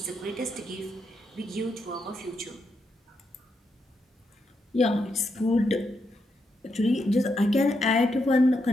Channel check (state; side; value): normal; both; correlation 0.82